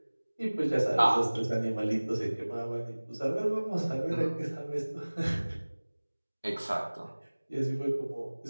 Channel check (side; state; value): both; inverted; correlation -1.00